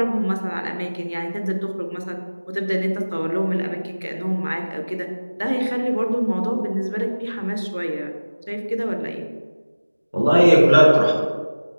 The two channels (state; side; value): inverted; both; correlation -1.00